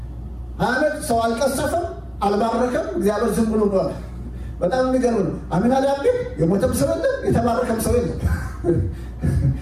20 ዓመት ሰው አልቀሰፈም፣ አልባረከም። እግዚአብሔር ዝም ብሎ ነው። በጣም የሚገርም ነው። አሚናዳብ ቤት የሞተም ሰው የለም፣ የተባረከም ሰው የለም።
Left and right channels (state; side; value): identical; both; correlation 1.00